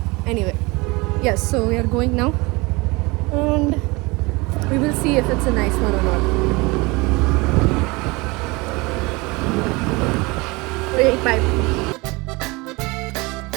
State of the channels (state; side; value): quieter; left; 24.8 dB